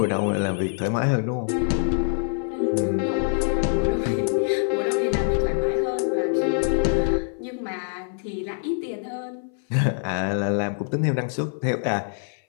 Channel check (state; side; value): silent; right; 62 dB below the other